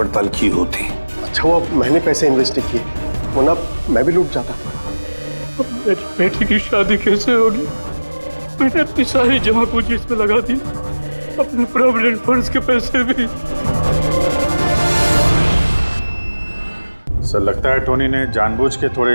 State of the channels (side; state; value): both; inverted; correlation -1.00